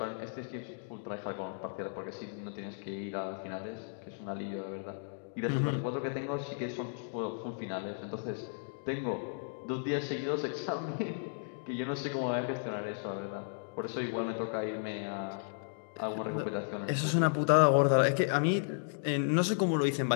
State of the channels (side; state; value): right; silent; digital silence